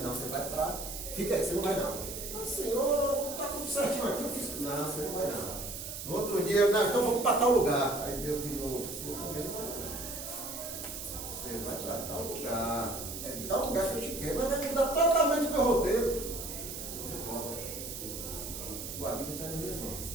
não, você vai para... Fica aí, você não vai não. Mas Senhor, está tudo certinho aqui, eu fiz... Não, você não vai não. No outro dia, não, então vamos para tal lugar. Aí Deus de novo, você vai para tal lugar. É de tal lugar que eu te quero, mas vai mudar totalmente o meu roteiro. Não pode. Tua vida está nas minhas mãos.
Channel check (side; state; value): right; noise; hiss, 8 dB below the sound